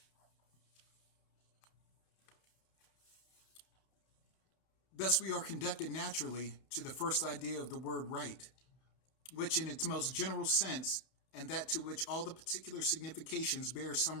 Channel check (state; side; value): late; right; 31 ms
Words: Thus we are conducted naturally to the first idea of the word right, which in its most general sense, and that to which all the particular significations bear